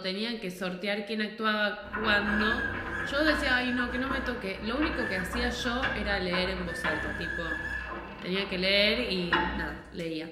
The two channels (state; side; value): identical; both; correlation 1.00